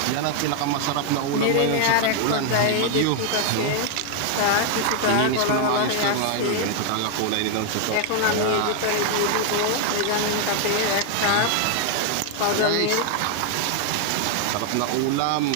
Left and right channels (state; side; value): different; both; correlation 0.00